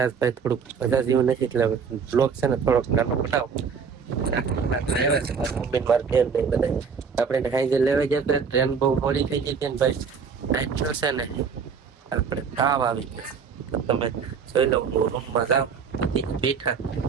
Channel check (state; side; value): quieter; left; 6.1 dB